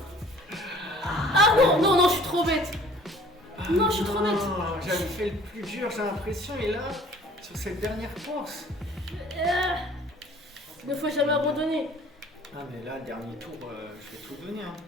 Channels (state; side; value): normal; both; correlation 0.51